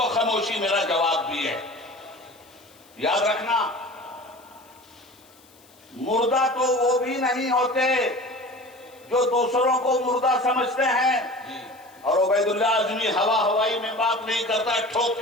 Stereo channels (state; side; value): noise; left; hiss, 28 dB below the sound